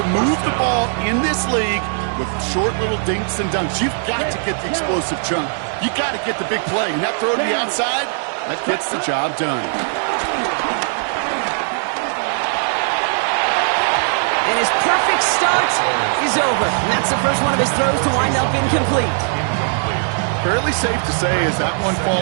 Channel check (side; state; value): left; silent; 63 dB below the other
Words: move the ball in this league with short little dinks and dunks. You've got to get the explosive chunk. You got to get the big play. And that throw to the outside, that gets the job done. And his perfect start is over. And that's the first one of his throws to wind up incomplete. Fairly safe to say as that one